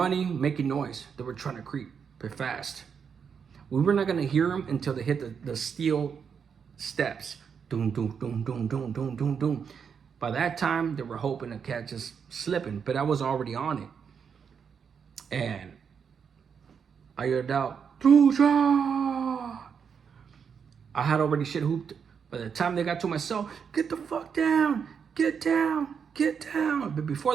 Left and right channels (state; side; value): quieter; left; 6.8 dB